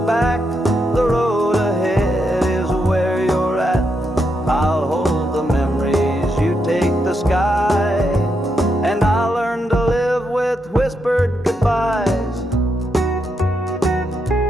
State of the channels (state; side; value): normal; both; correlation 0.82